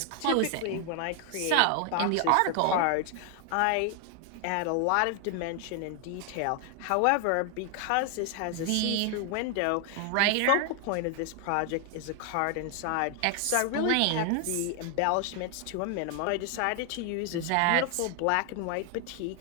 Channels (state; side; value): different; both; correlation 0.00